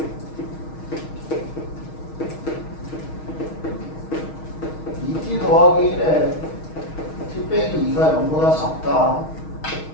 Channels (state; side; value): late; right; 6.4 ms